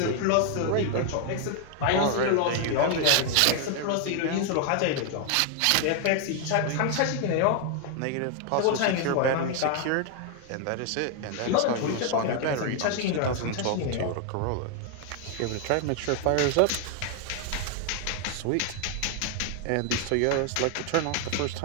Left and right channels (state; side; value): different; both; correlation 0.00